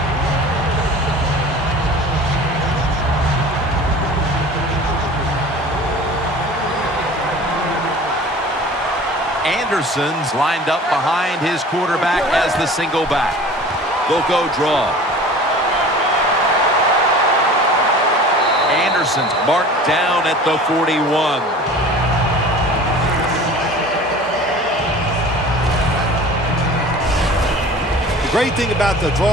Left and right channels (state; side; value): normal; both; correlation 0.42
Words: Anderson's lined up behind his quarterback as the single back. They'll go draw. Anderson's marked down at the 41. The great thing about the